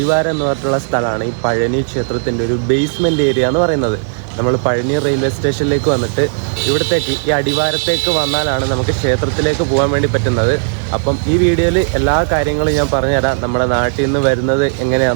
എന്ന് പറഞ്ഞിട്ടുള്ള സ്ഥലമാണ് ഈ പഴനി ക്ഷേത്രത്തിൻ്റെ ഒരു ബേസ്മെൻറ്റ് ഏരിയ എന്ന് പറയുന്നത്. നമ്മൾ പഴനി റെയിൽവേ സ്റ്റേഷനിലേക്ക് വന്നിട്ട് ഇവിടത്തേക്ക് ഈ അടിവാരത്തേക്ക് വന്നാലാണ് നമുക്ക് ക്ഷേത്രത്തിലേക്ക് പോകാൻ വേണ്ടി പറ്റുന്നത്. അപ്പം ഈ വീഡിയോയിൽ എല്ലാ കാര്യങ്ങളും ഞാൻ പറഞ്ഞുതരാം. നമ്മുടെ നാട്ടിൽ നിന്ന് വരുന്നത്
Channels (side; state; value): left; silent; digital silence